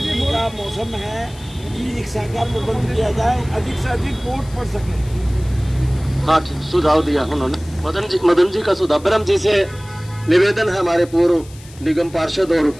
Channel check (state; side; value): noise; left; hiss, 22 dB below the sound